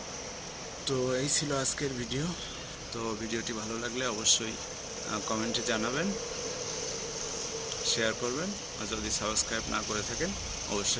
তো এই ছিল আজকের ভিডিও। তো ভিডিওটি ভালো লাগলে অবশ্যই কমেন্টে জানাবেন, শেয়ার করবেন, আর যদি সাবস্ক্রাইব না করে থাকেন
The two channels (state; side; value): identical; both; correlation 1.00